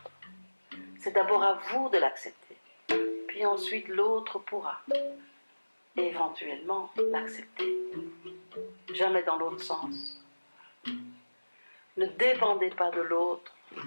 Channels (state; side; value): inverted; both; correlation -1.00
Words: C'est d'abord à vous de l'accepter, puis ensuite l'autre pourra éventuellement l'accepter. Jamais dans l'autre sens. Ne dépendez pas de l'autre,